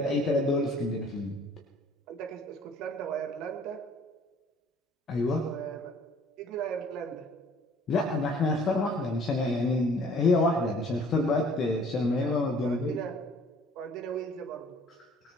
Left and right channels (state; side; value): normal; both; correlation 0.55